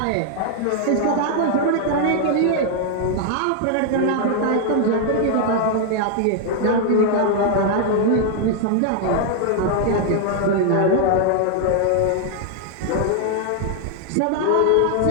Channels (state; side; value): different; both; correlation 0.00